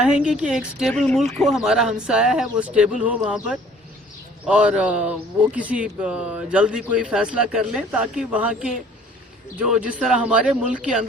कि एक स्टेबल मुल्क हो, हमारा हमसाया है वो स्टेबल हो वहाँ पर, और वो किसी जल्दी कोई फैसला कर लें ताकि वहाँ के जो जिस तरह हमारे मुल्क के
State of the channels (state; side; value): normal; both; correlation 0.54